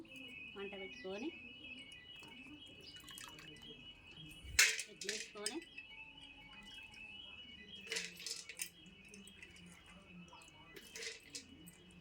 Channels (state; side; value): identical; both; correlation 1.00